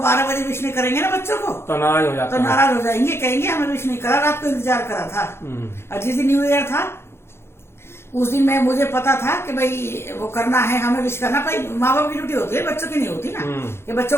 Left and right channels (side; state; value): right; late; 0.12 ms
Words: बजे विश नहीं करेंगे ना बच्चों को तो नाराज हो जाते तो नाराज हो जाएंगे, कहेंगे हमें विश नहीं करा, रात को इंतजार करा था। और जिस दिन न्यू ईयर था उस दिन मुझे पता था कि भाई वो करना है, हमें विश करना। भाई माँ बाप की ड्यूटी होती है, बच्चों की नहीं होती ना, कि